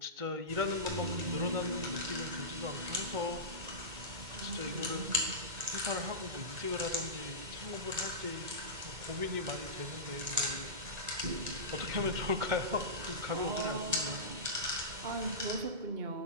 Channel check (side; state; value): left; late; 2.2 ms